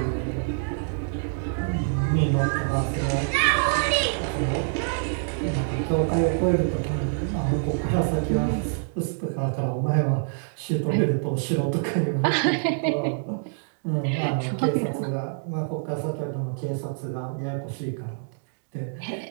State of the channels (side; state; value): left; silent; digital silence